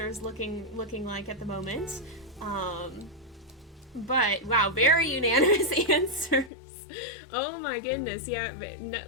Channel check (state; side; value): drops out; right; at 6.5 s